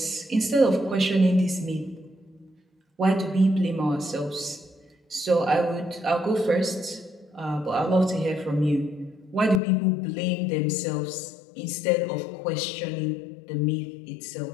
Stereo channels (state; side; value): drops out; right; at 9.6 s